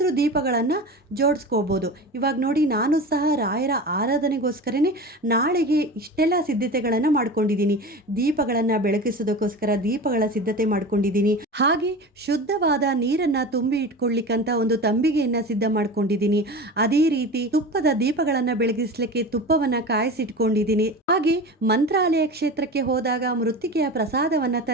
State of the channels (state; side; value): normal; both; correlation 0.31